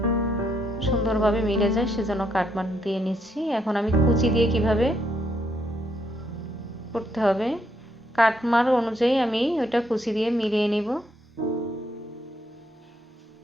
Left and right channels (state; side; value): normal; both; correlation 0.74